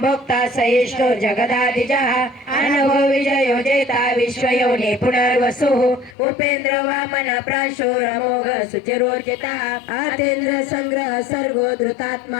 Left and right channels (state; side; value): drops out; right; at 6.2 s